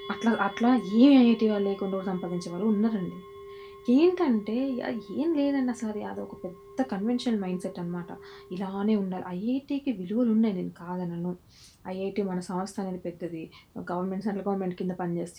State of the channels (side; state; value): both; identical; correlation 1.00